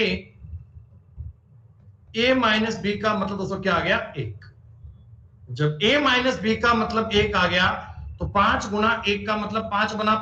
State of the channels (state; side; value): identical; both; correlation 1.00